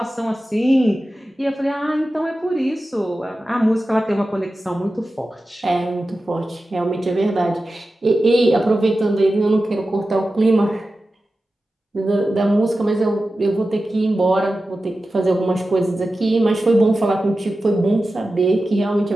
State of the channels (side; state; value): both; normal; correlation 0.94